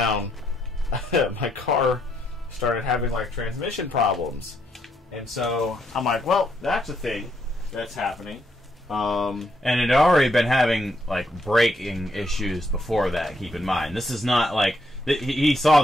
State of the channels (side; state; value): both; normal; correlation 0.75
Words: my car started having, like, transmission problems. And so I'm like, well, that's a thing that's happening. And it had already been having, like, braking issues before that, keep in mind. This is not, like... He saw